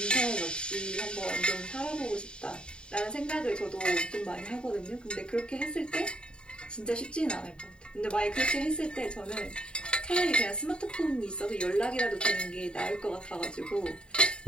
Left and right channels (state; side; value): late; right; 0.051 ms